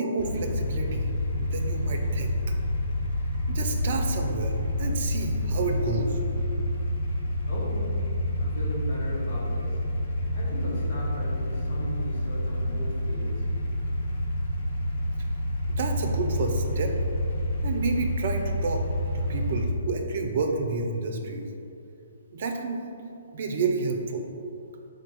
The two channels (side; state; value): both; inverted; correlation -0.68